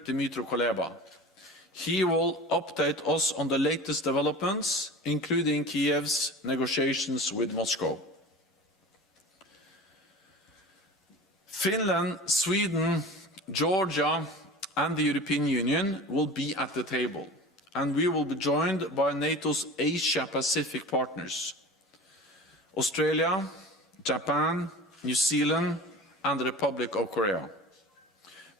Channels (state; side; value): normal; both; correlation 0.36